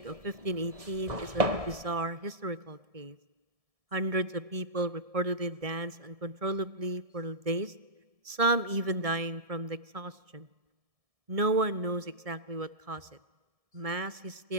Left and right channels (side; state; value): left; late; 1.7 ms